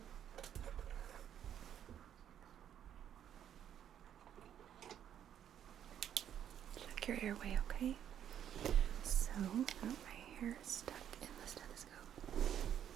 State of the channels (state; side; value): quieter; left; 9.8 dB